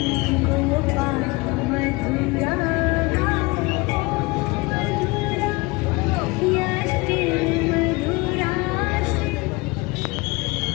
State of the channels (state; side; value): quieter; right; 24.8 dB